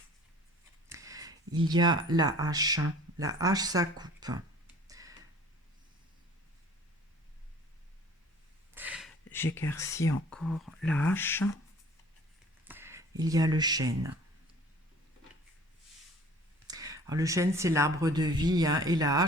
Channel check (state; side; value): normal; both; correlation 0.49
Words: Il y a la hache. La hache, ça coupe. J'éclaircis encore la hache. Il y a le chêne. Alors, le chêne, c'est l'arbre de vie, hein, et la